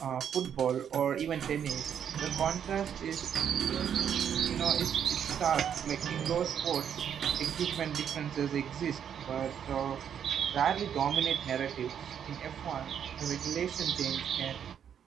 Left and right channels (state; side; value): quieter; left; 8.6 dB